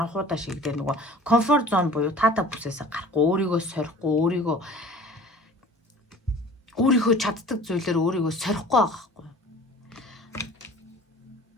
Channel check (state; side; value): normal; both; correlation 0.45